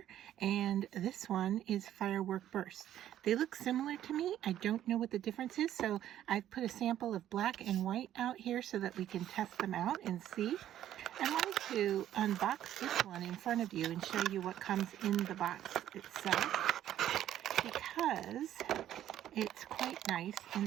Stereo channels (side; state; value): left; quieter; 11.8 dB